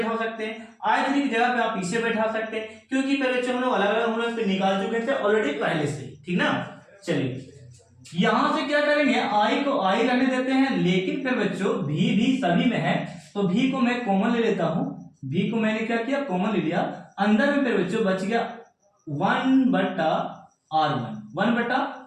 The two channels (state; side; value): identical; both; correlation 1.00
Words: सकते हैं, I3 की जगह पे आप इसे बैठा सकते हैं, क्योंकि पहले जो हम लोग अलग अलग हम लोग निकाल चुके थे ऑलरेडी पहले से, ठीक ना। चलिए यहां से क्या करेंगे, I को I रहने देते हैं, लेकिन फिर बच्चों V भी सभी में है, तो V को मैं कॉमन ले लेता हूं, V को मैंने क्या किया कॉमन ले लिया, अंदर में फिर बच्चों बच गया 1 बटा